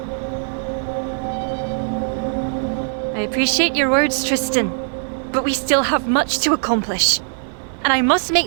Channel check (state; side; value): silent; left; 57 dB below the other